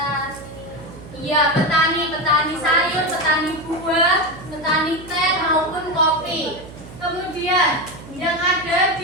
Iya, petani sayur, petani buah, petani teh maupun kopi. Kemudian yang ada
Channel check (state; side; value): noise; right; hum, 16 dB below the sound